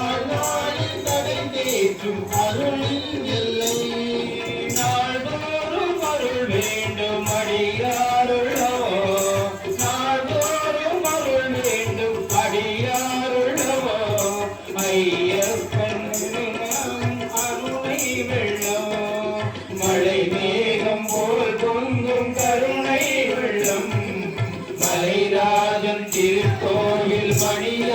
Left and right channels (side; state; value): both; identical; correlation 1.00